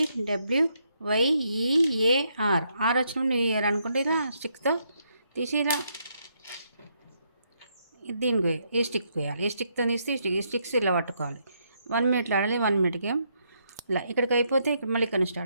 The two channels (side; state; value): both; inverted; correlation -0.76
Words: వచ్చినప్పుడు న్యూ ఇయర్ అనుకుంటే ఇలా స్టిక్తో తీసి ఇలా దీనికి ఈ స్టిక్ వేయాలి. ఈ స్టిక్తో తీసి ఈ స్టిక్స్ ఇలా పట్టుకోవాలి. 1 మినిట్లో ఆడాలి. 1 మినిట్ గేమ్. ఇలా ఇక్కడికి అయిపోతే ఇక్కడ మళ్ళీ ఇక్కడ